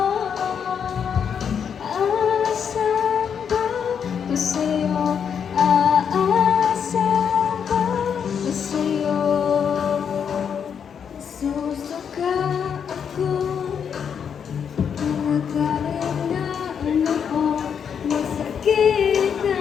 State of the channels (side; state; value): right; quieter; 7.5 dB